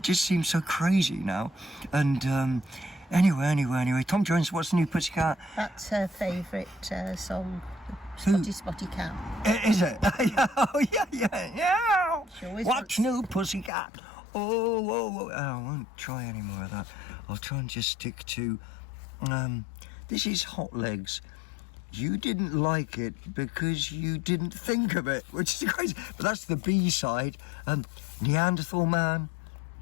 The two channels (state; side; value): drops out; right; at 13.7 s